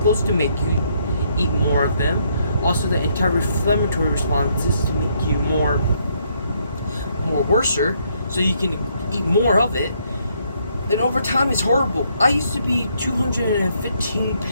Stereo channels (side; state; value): both; inverted; correlation -0.71